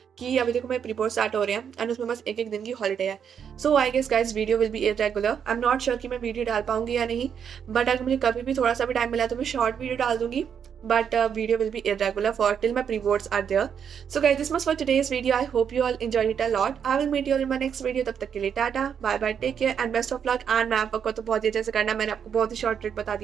कि अभी देखो मैं प्री बोर्ड स्टार्ट हो रहे हैं एंड उसमें बस एक दिन की हॉलीडे है। So I guess guys video will be irregular. I am not sure कि मैं वीडियो डाल पाऊंगी या नहीं, बट अगर मुझे कभी भी थोड़ा सा भी टाइम मिला तो मैं शॉर्ट वीडियो डाल दूंगी, but video will be irregular for till my pre-boards are there. So guys, this much for today's video. I hope you all enjoyed it a lot. I will meet you all in my next video. तब तक के लिए tata, bye bye, take care and best of luck. And मैं आपको तो बहुत ही अच्छे से करना, मैंने आपको बहुत ही शॉर्ट ट्रिक बता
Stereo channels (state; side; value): quieter; left; 7.8 dB